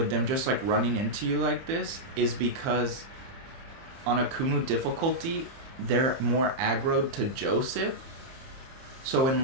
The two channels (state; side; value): late; left; 30 ms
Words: them just like running into you like this is because on Akumu difficulty, they're more aggroed to Joseph. So